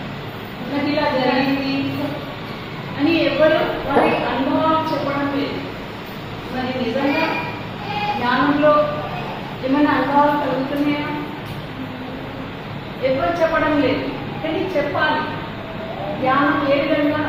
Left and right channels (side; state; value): both; identical; correlation 1.00